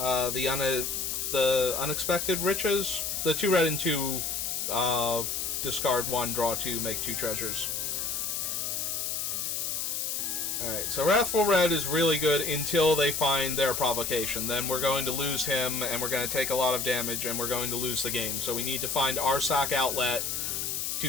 Riches, the 2 red and 2 discard 1, draw 2, make 2 treasures. Alright, so Wrathful Red is really good until they find their provocation. Then we're going to lose him, and we're going to take a lot of damage, and we're going to lose the game. So we need to find our sack outlet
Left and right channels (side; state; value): left; noise; hiss, 1 dB below the sound